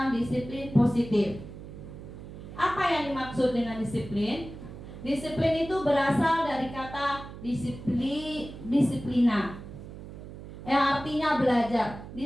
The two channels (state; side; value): noise; right; hum, 13 dB below the sound